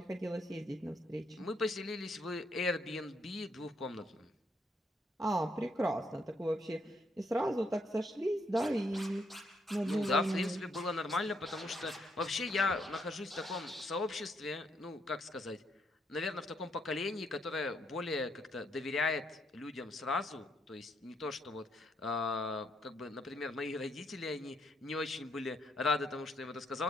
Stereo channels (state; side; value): normal; both; correlation 0.74